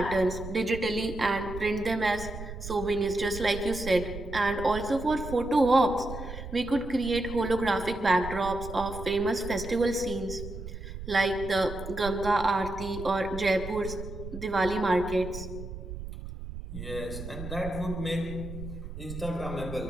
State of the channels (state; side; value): noise; right; rumble, 10 dB below the sound